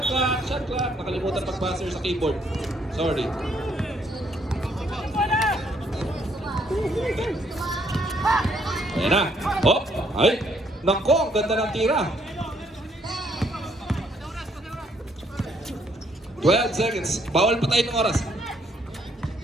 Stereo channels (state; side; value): normal; both; correlation 0.69